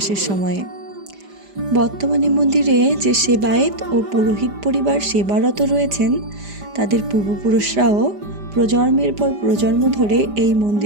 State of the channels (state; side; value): late; left; 5.0 ms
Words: সময়ে। বর্তমানে মন্দিরে যে সেবায়েত ও পুরোহিত পরিবার সেবারত রয়েছেন তাদের পূর্বপুরুষরাও প্রজন্মের পর প্রজন্ম ধরে এই